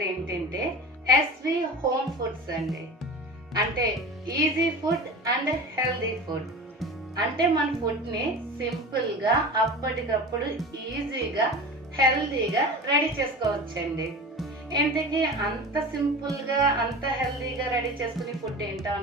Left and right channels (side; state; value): both; normal; correlation 0.33